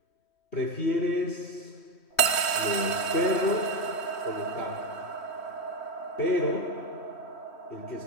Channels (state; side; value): late; right; 3.1 ms